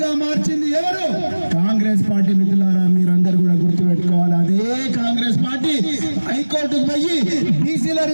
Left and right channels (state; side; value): inverted; both; correlation -1.00